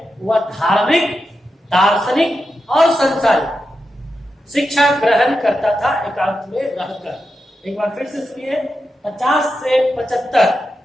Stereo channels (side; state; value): both; normal; correlation 0.88